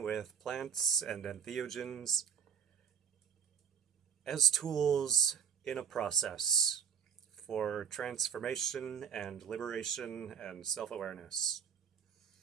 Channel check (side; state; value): left; quieter; 7.3 dB